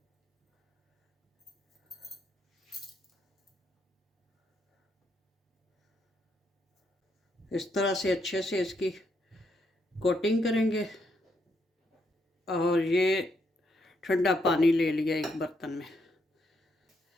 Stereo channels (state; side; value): normal; both; correlation 0.77